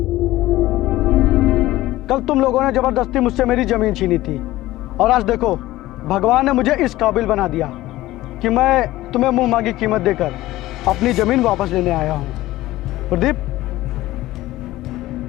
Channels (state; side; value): quieter; right; 16.7 dB